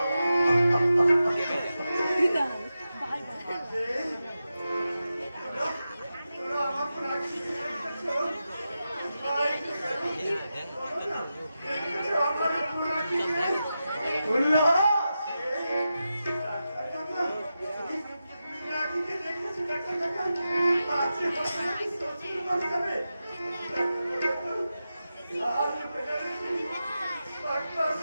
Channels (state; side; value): inverted; both; correlation -0.90